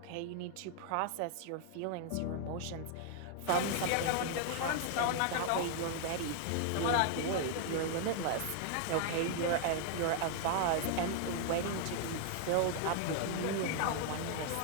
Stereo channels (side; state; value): both; different; correlation 0.00